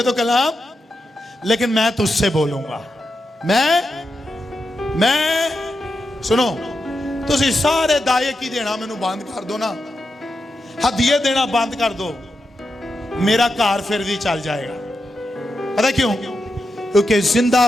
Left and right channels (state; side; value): normal; both; correlation 0.87